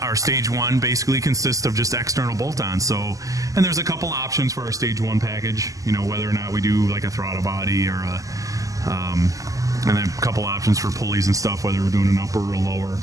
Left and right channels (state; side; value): late; left; 0.16 ms